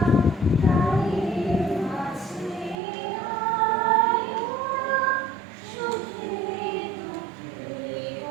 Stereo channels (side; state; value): left; drops out; at 2.8 s